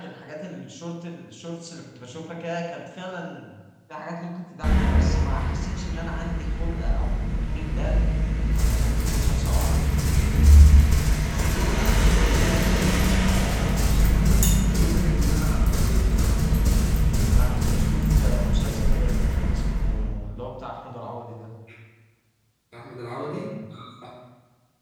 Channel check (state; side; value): identical; both; correlation 1.00